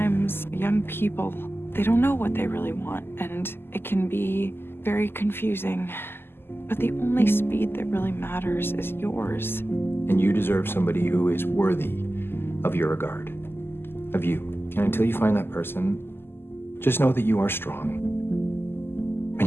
young people, they don't know what they really want, and it can be very confusing. But the only speed that really matters is yours. And you deserve somebody who is worthy of your regard, of you. And until you find that person, just know that you are strong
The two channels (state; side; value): late; right; 0.11 ms